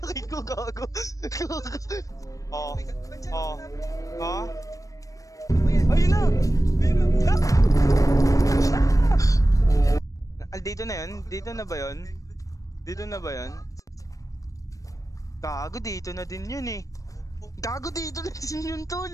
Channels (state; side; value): late; right; 0.16 ms